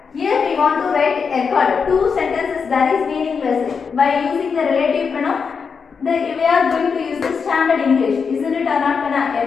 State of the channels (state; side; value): quieter; right; 5.8 dB